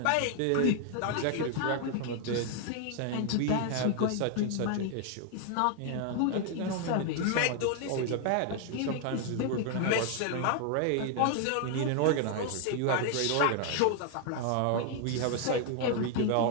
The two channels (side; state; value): both; different; correlation 0.00